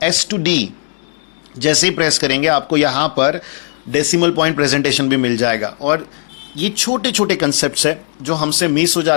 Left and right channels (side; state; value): right; silent; 64 dB below the other